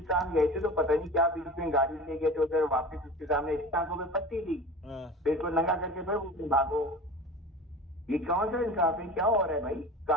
गए थे तो पता नहीं क्या बीच में गाड़ी ले गए थे, उधर वापस उसके सामने टांगों में पट्टी दी, हाँ। फिर को नंगा करके फिर उसमें भागो। ये कौन सा इंसाफ है, क्या हो रहा है भाई?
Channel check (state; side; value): normal; both; correlation 0.35